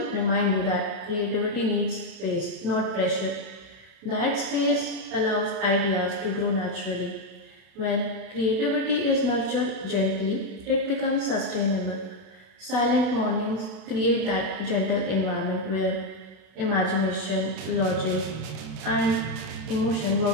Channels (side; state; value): left; late; 32 ms